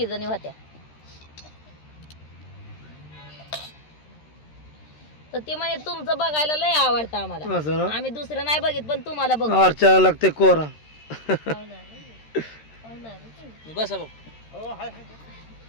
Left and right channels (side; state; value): right; late; 13 ms